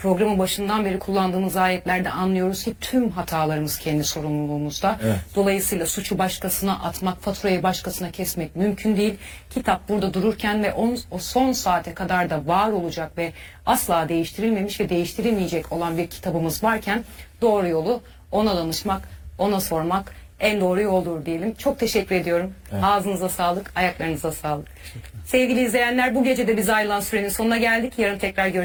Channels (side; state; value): both; identical; correlation 1.00